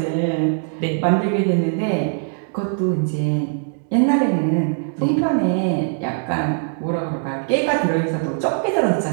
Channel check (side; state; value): left; silent; digital silence